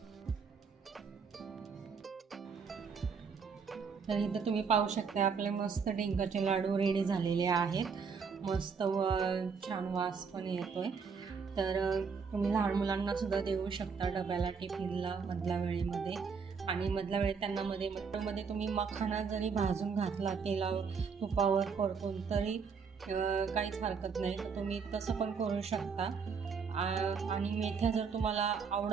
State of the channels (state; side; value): quieter; left; 5.7 dB